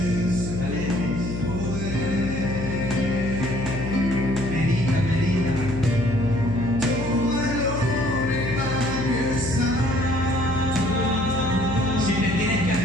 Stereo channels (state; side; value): noise; left; hum, 6 dB below the sound